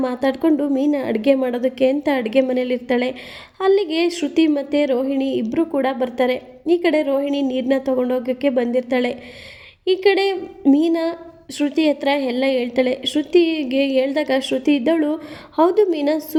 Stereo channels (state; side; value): identical; both; correlation 1.00